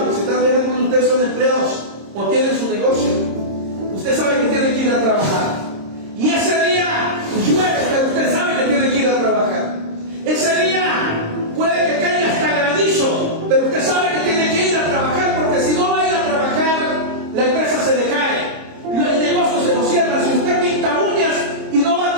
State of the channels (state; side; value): late; left; 26 ms